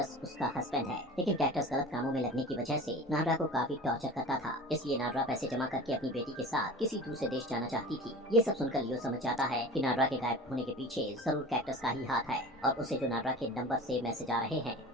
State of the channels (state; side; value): normal; both; correlation 0.36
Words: उसका हस्बैंड है। लेकिन कैक्टस गलत कामों में लगने की वजह से नादरा को काफी टॉर्चर करता था, इसलिए नादरा पैसे जमा करके अपनी बेटी के साथ किसी दूसरे देश जाना चाहती थी। ये सब सुनकर लियो समझ जाता है कि नादरा के गायब होने के पीछे जरूर कैक्टस का ही हाथ है और उसे जो नादरा के नंबर से मैसेज आ रहे हैं